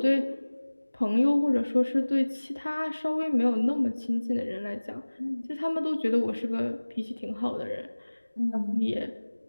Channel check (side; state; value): both; inverted; correlation -1.00